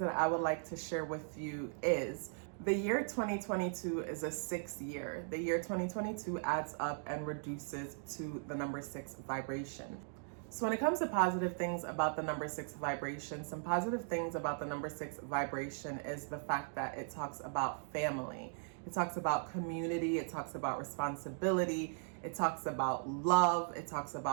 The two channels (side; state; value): left; silent; digital silence